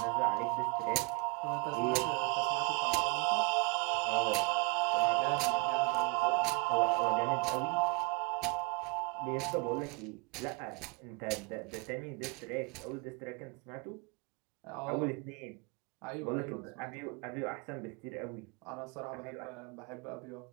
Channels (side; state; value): left; quieter; 29.8 dB